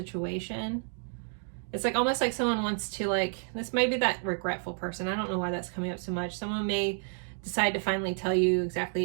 It's like almost like someone wants to, like, this might be that regretful person. I don't know why that's coming up so much. Someone may decide to finally tell you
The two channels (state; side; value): silent; left; 58 dB below the other